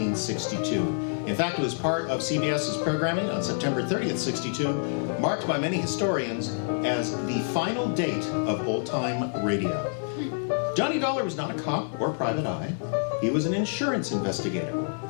In fact, it was part of CBS's programming on September 30th, 62, marked by many historians as the final date of old-time radio. Johnny Dollar was not a cop or private eye. He was an insurance investigator,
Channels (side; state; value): right; silent; digital silence